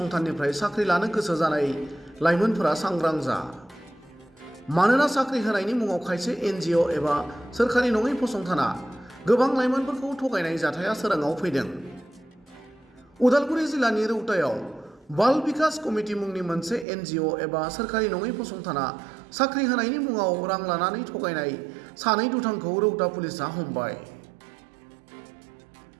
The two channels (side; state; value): left; drops out; at 16.9 s